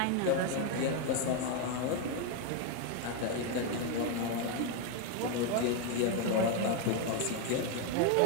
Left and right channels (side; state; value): both; different; correlation 0.01